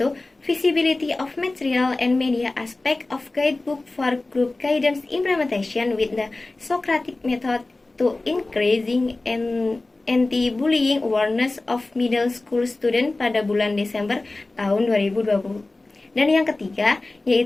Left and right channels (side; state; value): right; quieter; 3.1 dB